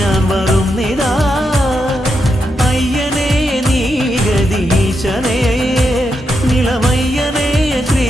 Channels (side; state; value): both; normal; correlation 0.84